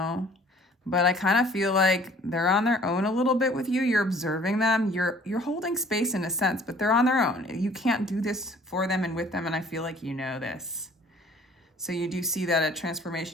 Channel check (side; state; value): both; normal; correlation 0.53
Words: But I kind of feel like they're on their own a little bit with you. You're observing them. You're holding space in a sense, but they're on their own. You can't do this for them and with them, and I feel like you know this. So you do see that a